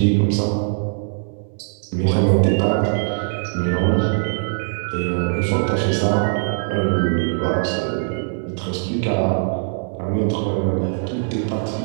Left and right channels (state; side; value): silent; left; digital silence